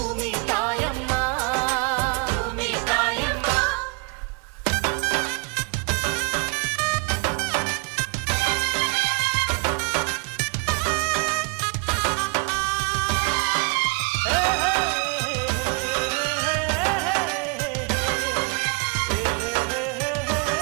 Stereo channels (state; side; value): quieter; left; 32.8 dB